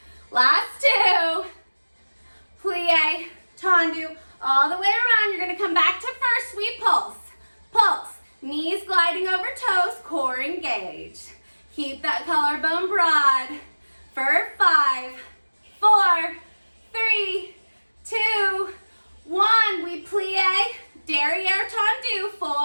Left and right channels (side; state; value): both; inverted; correlation -1.00